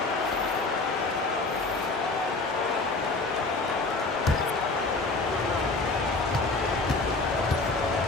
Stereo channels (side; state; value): right; quieter; 3.4 dB